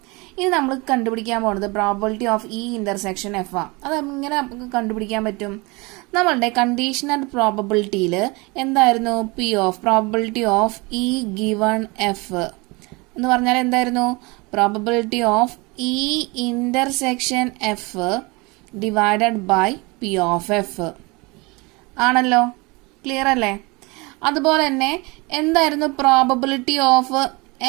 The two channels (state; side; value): quieter; left; 26.3 dB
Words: ഇനി നമ്മൾ കണ്ടുപിടിക്കാൻ പോകുന്നത് പ്രോബബിലിറ്റി ഓഫ് ഈ ഇന്റർസെക്ഷൻ എഫ് ആ. അത് എങ്ങനെ നമുക്ക് കണ്ടുപിടിക്കാൻ പറ്റും? നമ്മളുടെ കണ്ടീഷണൽ പ്രോബബിലിറ്റിയിൽ എന്തായിരുന്നു? P of probability of E given F എന്ന് പറഞ്ഞാൽ എന്തായിരുന്നു? Probability of E intersection F divided by P of F ആണല്ലോ. ക്ലിയർ അല്ലേ? അതുപോലെ തന്നെ എന്തായിരുന്നു probability of